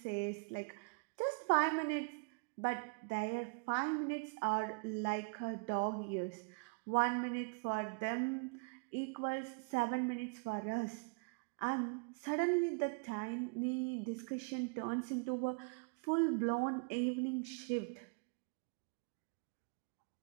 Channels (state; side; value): quieter; left; 34.0 dB